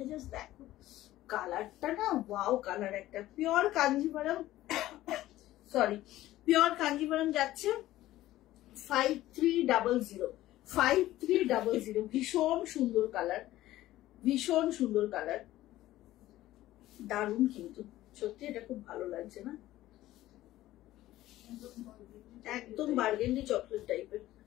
জাস্ট দেখো কালারটা না ওয়াও কালার একটা। Pure Kanjivaram sorry pure Kanjivaram যাচ্ছে 5300, ভীষণ সুন্দর কালার, ভীষণ সুন্দর কালার, দারুণ কিন্তু সত্যি এটা খুব ভালো লাগছে না, একদম বার্গেন্ডি চকলেট টাইপের।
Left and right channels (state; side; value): quieter; right; 15.3 dB